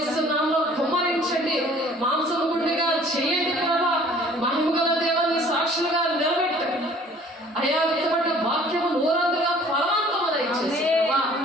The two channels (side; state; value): both; normal; correlation 0.53